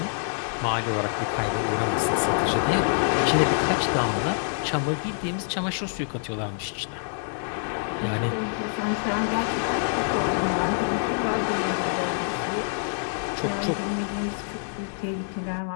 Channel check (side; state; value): right; silent; digital silence